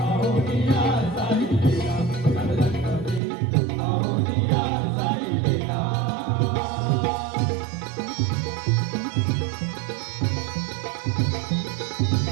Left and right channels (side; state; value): left; drops out; at 3.2 s